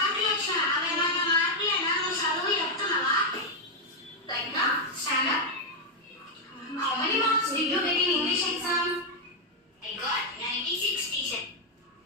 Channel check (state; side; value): normal; both; correlation 0.00